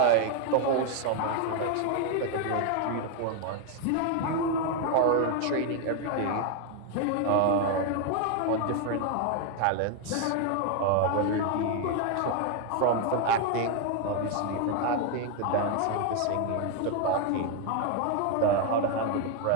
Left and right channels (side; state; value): both; different; correlation 0.01